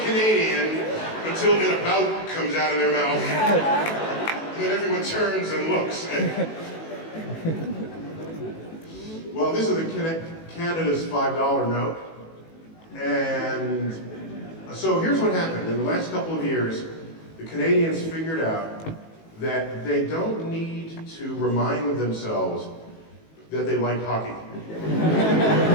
until an about comes out of their mouth. And then everyone turns and looks. Well, this is Canada's $5 note. And so here's what happened. In the last couple of years, the Canadians figured out that they don't need to remind themselves that they like hockey.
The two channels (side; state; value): right; late; 18 ms